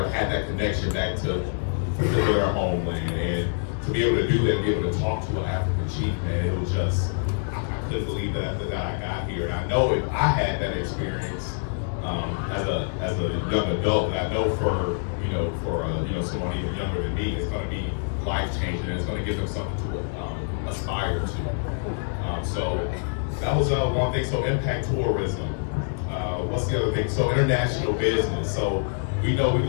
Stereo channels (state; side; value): silent; right; digital silence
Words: had that connection back to their homeland, and to be able to do that, and be able to talk to an African chief, man, it was just, I couldn't believe that after that I got here. And I know if I had that experience, as a young adult, and I know for someone even younger than me, it's going to be life changing, and it's going to give them something to aspire to. So that was one thing. So impact tourism. What's the other thing? So international business. So we know we